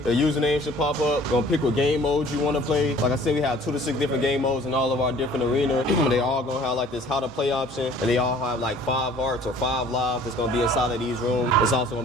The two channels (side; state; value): both; normal; correlation 0.52